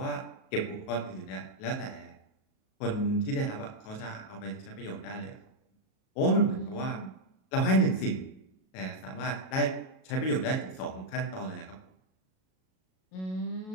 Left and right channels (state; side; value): late; right; 38 ms